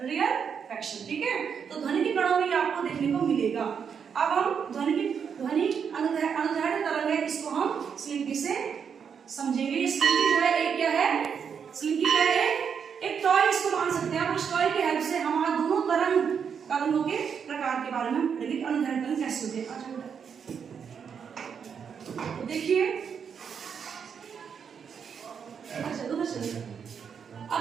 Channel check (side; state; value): left; quieter; 7.0 dB